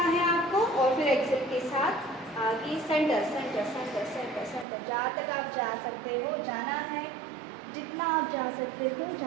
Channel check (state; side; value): drops out; left; at 4.7 s